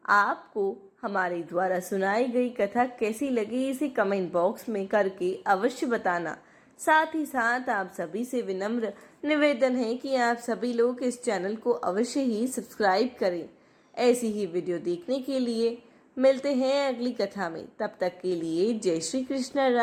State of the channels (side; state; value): both; identical; correlation 1.00